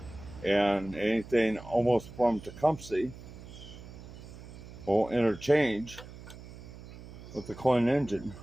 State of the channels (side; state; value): right; noise; hum, 15 dB below the sound